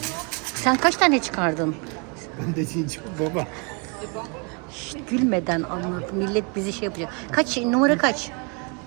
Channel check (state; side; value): quieter; left; 33.9 dB